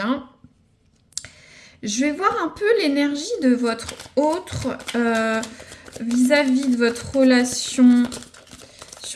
Je vais voir un peu l'énergie de votre autre vis-à-vis de votre relation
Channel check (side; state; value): both; identical; correlation 1.00